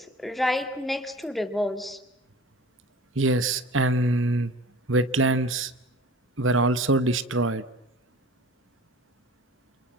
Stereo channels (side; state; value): both; normal; correlation 0.41